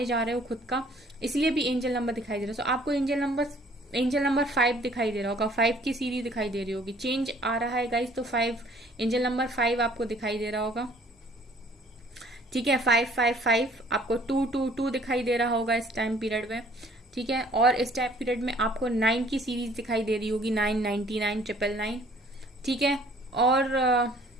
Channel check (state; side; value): normal; both; correlation 0.57